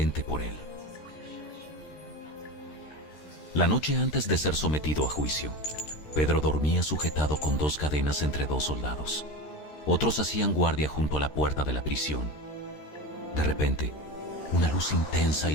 por él. La noche antes de ser sometido a juicio, Pedro dormía sujetado con 2 cadenas entre 2 soldados. Otros hacían guardia junto a la puerta de la prisión. De repente, una luz intensa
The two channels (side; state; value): right; late; 13 ms